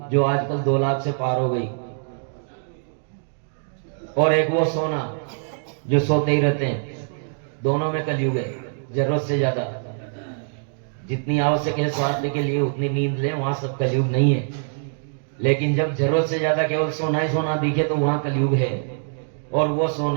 जो आजकल 2 लाख से पार हो गई, और एक वो सोना जो सोते ही रहते हैं। दोनों में कलयुग है, जरूरत से ज्यादा। जितनी आवश्यक है स्वास्थ्य के लिए उतनी नींद ले, वहां सब कलयुग नहीं है। लेकिन जब जरूरत से ज्यादा केवल सोना ही सोना दिखे तो वहां कलयुग है। और वो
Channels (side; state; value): left; silent; digital silence